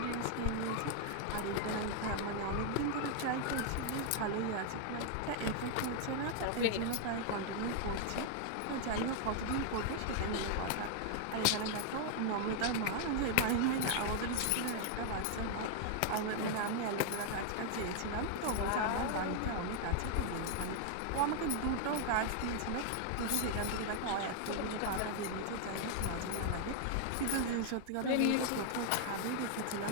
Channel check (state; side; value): different; both; correlation 0.00